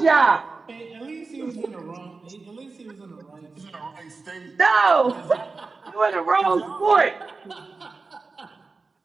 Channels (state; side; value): quieter; left; 4.1 dB